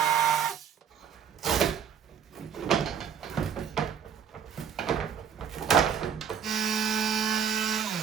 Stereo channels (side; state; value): left; quieter; 7.9 dB